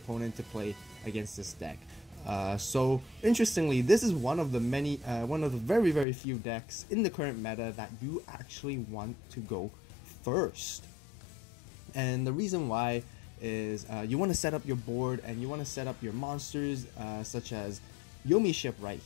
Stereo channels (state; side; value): drops out; right; at 6.1 s